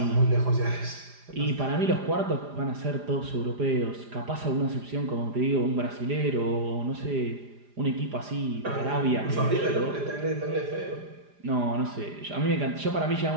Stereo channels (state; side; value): late; left; 4.9 ms